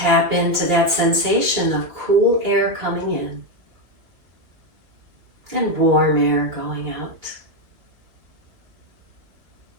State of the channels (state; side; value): late; left; 2.6 ms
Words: into that sensation of cool air coming in and warm air going out.